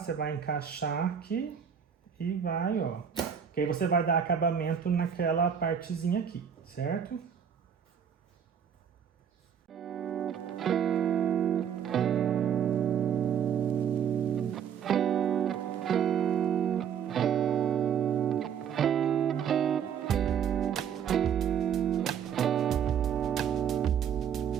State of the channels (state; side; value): quieter; left; 8.1 dB